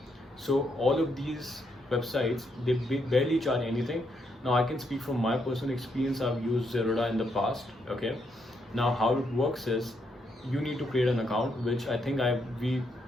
So all of these websites, they barely charge anything. Now I can speak from my personal experience. I've used Zerodha in the past. Okay, now how it works is you need to create an account, which I think we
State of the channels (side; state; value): both; normal; correlation 0.77